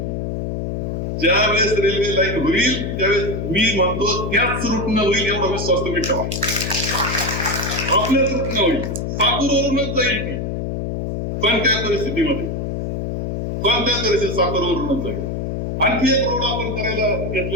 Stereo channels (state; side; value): noise; left; hum, 2 dB below the sound